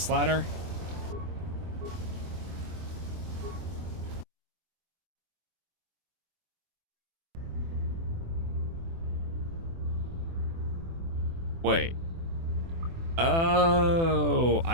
ladder. Wait. Oh,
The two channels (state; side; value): late; left; 24 ms